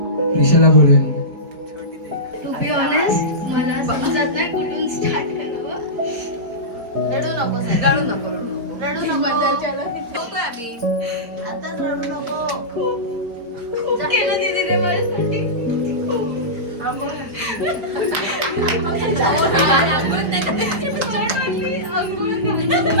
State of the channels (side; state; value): left; late; 4.5 ms